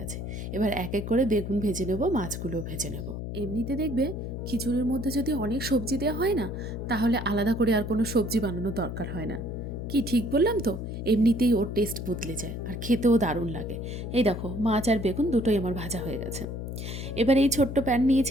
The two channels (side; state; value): left; noise; hum, 6 dB below the sound